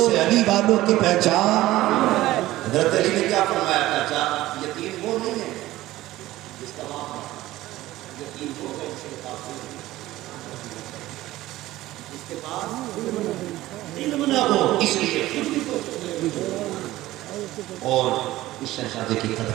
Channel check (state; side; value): quieter; left; 16.3 dB